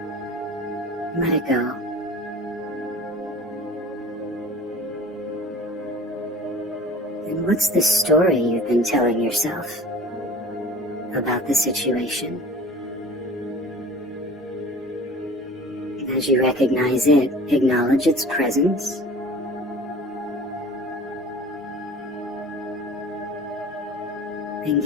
Let it go. And what's the story you've been telling yourself about the situation? As you recognize it, acknowledge its presence. And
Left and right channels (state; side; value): normal; both; correlation 0.43